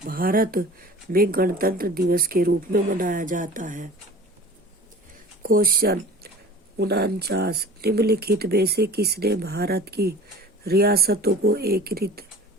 भारत में गणतंत्र दिवस के रूप में मनाया जाता है। क्वेश्चन 49, निम्नलिखित में से किसने भारत की रियासतों को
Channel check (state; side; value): normal; both; correlation 0.41